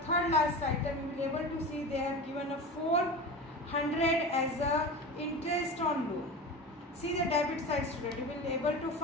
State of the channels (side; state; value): both; normal; correlation 0.29